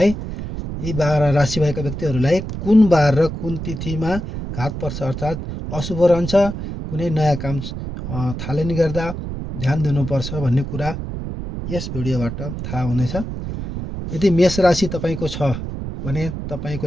12 राशि भएका व्यक्तिहरूलाई कुन बार र कुन तिथिमा घात पर्छ अर्थात् अशुभ रहन्छ, कुनै नयाँ काम थालनी गर्दा ध्यान दिनुपर्छ भन्ने कुरा यस भिडियोबाट थाहा हुनेछ। यदि मेष राशि तपाईँको छ भने तपाईँको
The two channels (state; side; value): noise; right; rumble, 7 dB below the sound